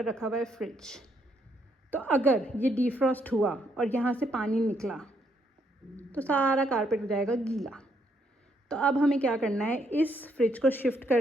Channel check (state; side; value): normal; both; correlation 0.73